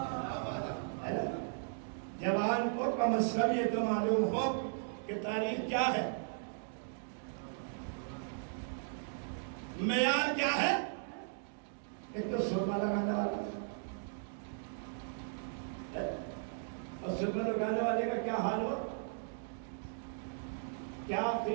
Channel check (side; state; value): left; silent; digital silence